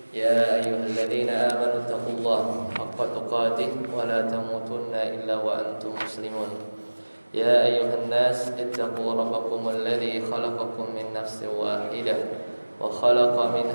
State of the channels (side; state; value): both; inverted; correlation -1.00